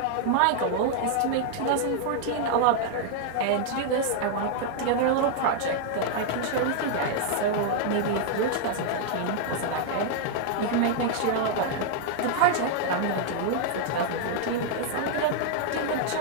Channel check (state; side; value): different; both; correlation 0.00